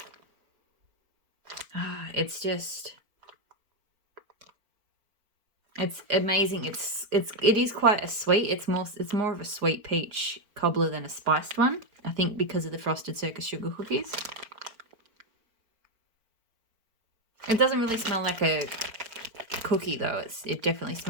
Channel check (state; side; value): late; left; 4.5 ms